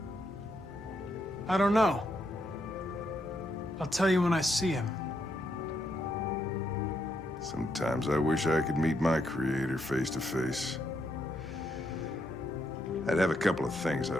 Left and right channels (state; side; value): normal; both; correlation 0.79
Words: I don't know. I'll tell you when I see him. Sometimes I wish I could meet my creator face to face. I'd have a couple of things